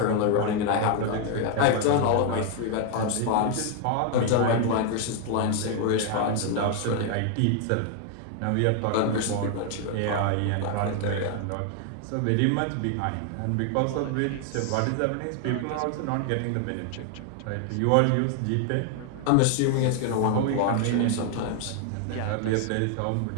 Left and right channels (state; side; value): different; both; correlation 0.00